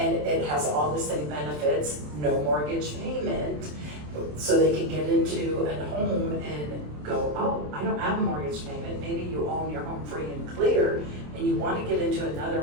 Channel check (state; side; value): late; left; 27 ms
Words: it has all the same benefits, no mortgage payment, so they can get into a home and go, oh, I don't have a mortgage payment. Maybe you own your home free and clear and you want to get into another